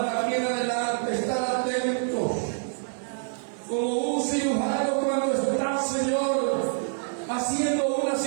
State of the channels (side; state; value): left; silent; 61 dB below the other